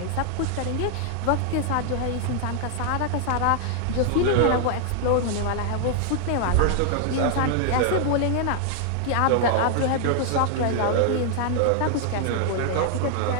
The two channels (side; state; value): both; different; correlation 0.00